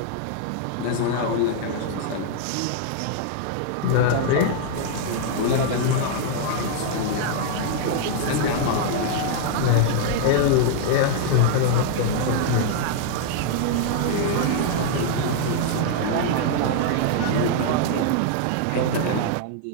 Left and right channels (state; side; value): different; both; correlation -0.01